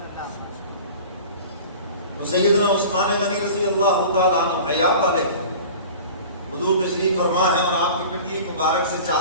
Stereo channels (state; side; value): inverted; both; correlation -0.40